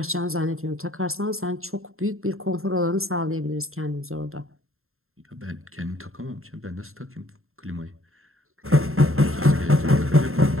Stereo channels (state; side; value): late; left; 0.61 ms